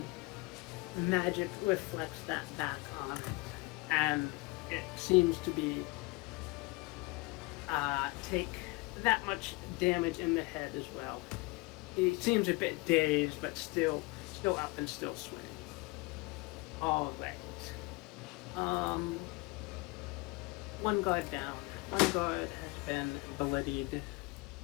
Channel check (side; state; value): right; quieter; 24.9 dB